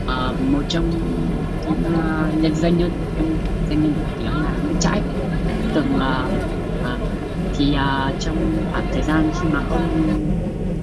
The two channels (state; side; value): identical; both; correlation 1.00